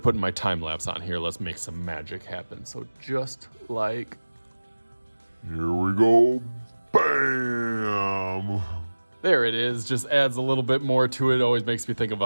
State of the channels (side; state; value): both; inverted; correlation -1.00